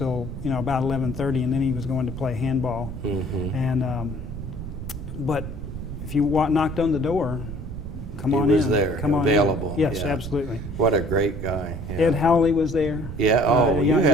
about 11:30, and then he was going to play handball. Mm-hmm. And but if you knocked on the door, come on He was in. there, Come on available, in. Yes, yeah. absolutely. What a great guy. Yeah. Ed Howley was there. Yeah, oh, you young,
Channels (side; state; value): right; noise; rumble, 8 dB below the sound